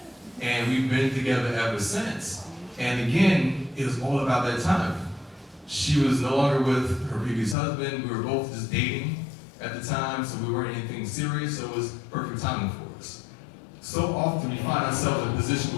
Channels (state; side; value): drops out; right; at 7.6 s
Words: And we've been together ever since. And again, it was all about that time. She was no longer with her previous husband. We were both just dating at the time, so we weren't anything serious, so it was perfect timing for us. So often we find ourselves in a position